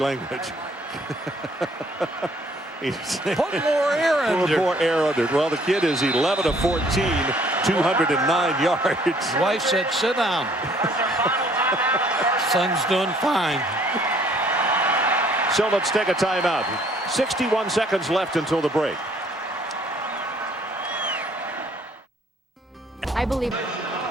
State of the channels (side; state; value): both; normal; correlation 0.61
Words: Put more air under. More air under. Well, the kid is 11 of 14, 209 yards. Wife said, sit down. Son's doing fine. So let's take a timeout. 61 seconds left until the break. I believe.